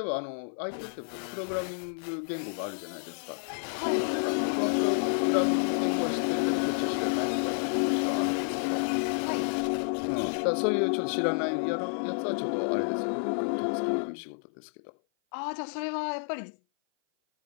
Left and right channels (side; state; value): right; silent; 56 dB below the other